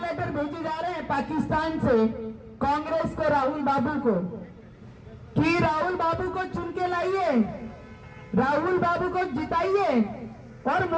लेटर भेजे जा रहे हैं पाकिस्तान से कांग्रेस को, राहुल बाबू को, कि राहुल बाबू को चुन के लाइए, राहुल बाबू को जिताइए और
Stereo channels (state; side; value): identical; both; correlation 1.00